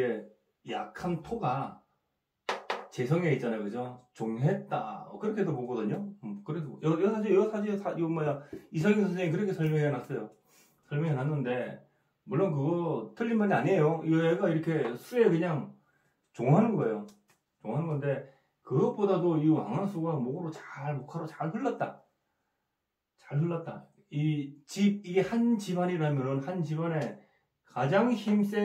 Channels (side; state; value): both; identical; correlation 1.00